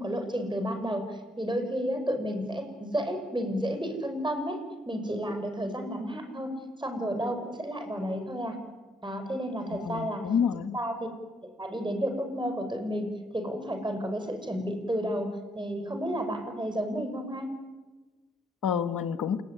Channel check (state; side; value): normal; both; correlation 0.71